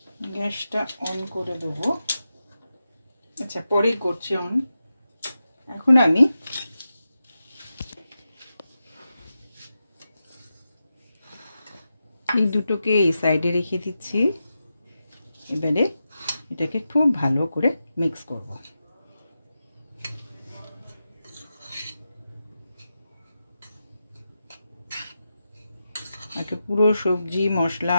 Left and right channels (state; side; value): inverted; both; correlation -0.90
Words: গ্যাসটা অন করে দেবো। আচ্ছা পরেই করছি অন। এখন আমি এই দুটোকে এই সাইডে রেখে দিচ্ছি। এবারে এটাকে খুব ভালো করে মিক্স করব। আগে পুরো সবজি মশলা